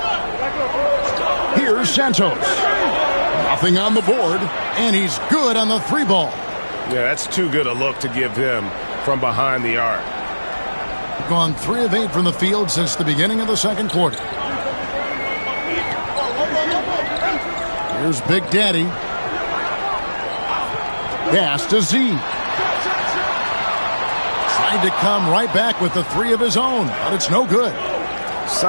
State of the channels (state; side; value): inverted; both; correlation -1.00